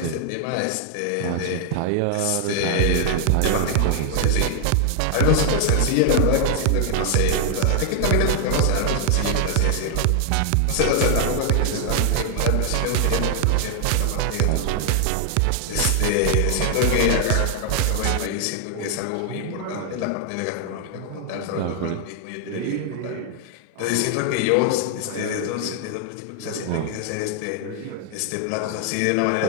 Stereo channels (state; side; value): different; both; correlation 0.00